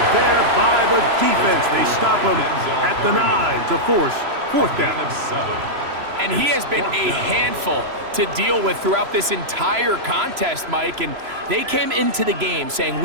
there by the defense. They stop him at the 9 to force 4th down. And he has been a handful to deal with throughout this entire contest, Mike. And they came into the game saying,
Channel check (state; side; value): late; left; 3.0 ms